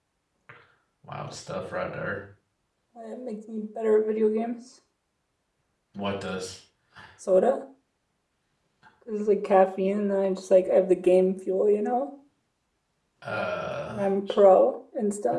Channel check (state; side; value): identical; both; correlation 1.00